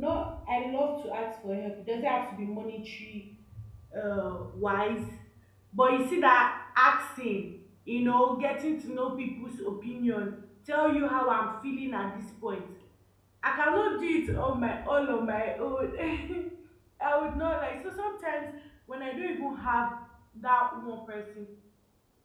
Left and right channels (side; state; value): both; identical; correlation 1.00